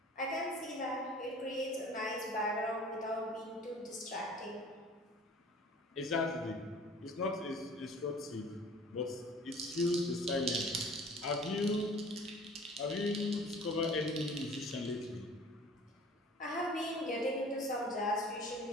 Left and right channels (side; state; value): both; normal; correlation 0.47